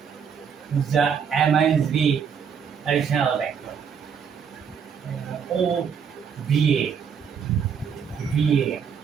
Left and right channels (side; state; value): left; quieter; 7.0 dB